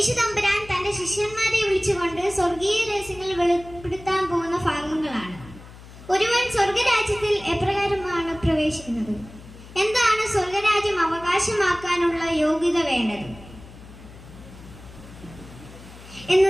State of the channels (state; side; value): noise; left; hum, 18 dB below the sound